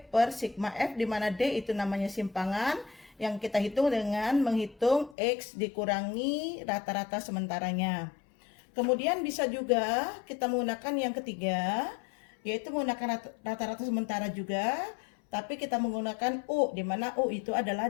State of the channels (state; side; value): drops out; right; at 5.2 s